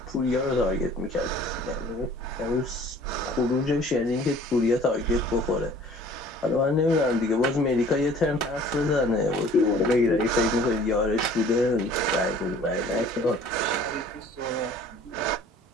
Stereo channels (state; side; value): normal; both; correlation 0.51